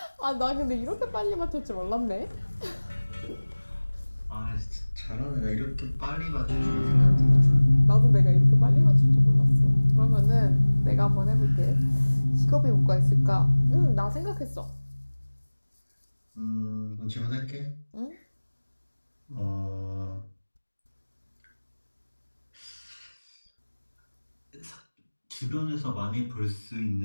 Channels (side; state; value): both; inverted; correlation -1.00